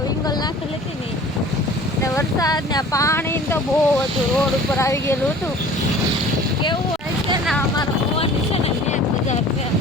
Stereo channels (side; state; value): both; normal; correlation 0.46